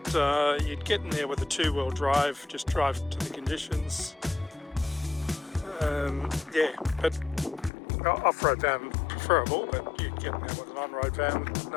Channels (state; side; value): drops out; right; at 7.7 s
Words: you'd get in there with a two-wheel drive, just drive to the conditions. Yeah, but off-road van preferable, but you'd get in there with an on-road van,